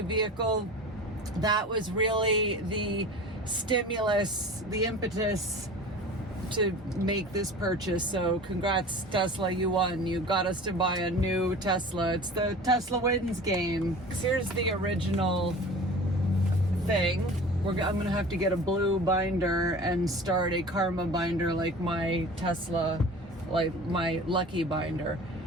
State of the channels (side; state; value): both; normal; correlation 0.39